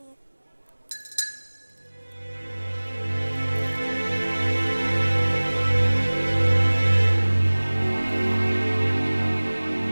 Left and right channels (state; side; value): inverted; both; correlation -1.00